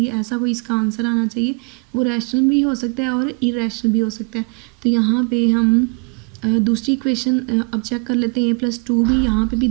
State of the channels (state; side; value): quieter; left; 36.8 dB